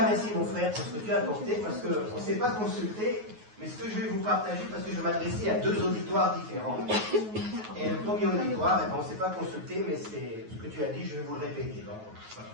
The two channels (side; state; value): left; late; 9.4 ms